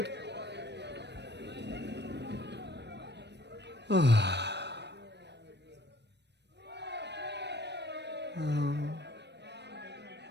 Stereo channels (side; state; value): left; late; 0.50 ms